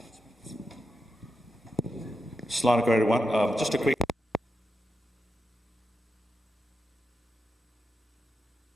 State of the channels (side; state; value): both; normal; correlation 0.88